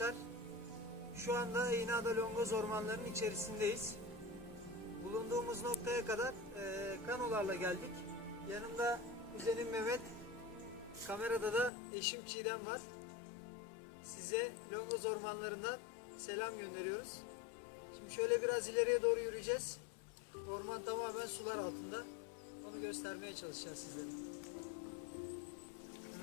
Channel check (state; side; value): drops out; right; at 11.7 s